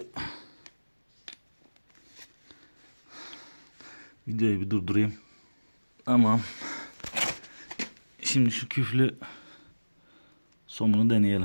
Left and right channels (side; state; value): both; inverted; correlation -1.00